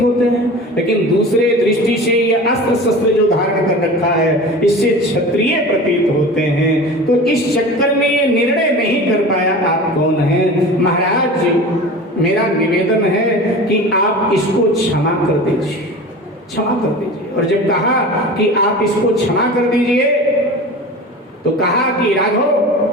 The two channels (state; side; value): normal; both; correlation 0.35